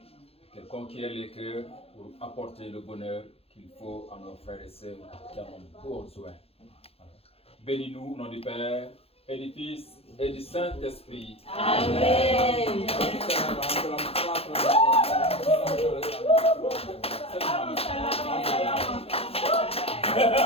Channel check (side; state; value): right; late; 0.29 ms